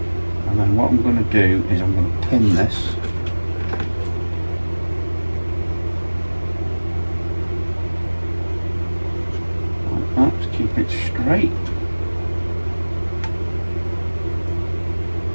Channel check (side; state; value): both; inverted; correlation -1.00